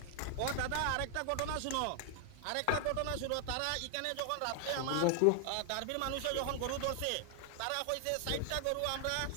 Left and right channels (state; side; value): different; both; correlation 0.00